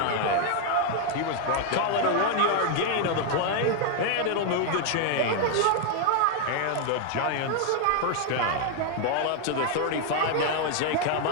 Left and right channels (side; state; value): both; different; correlation 0.00